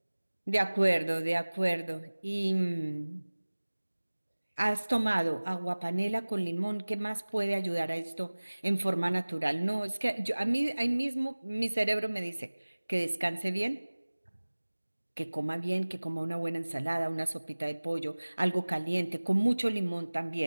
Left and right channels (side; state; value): both; inverted; correlation -1.00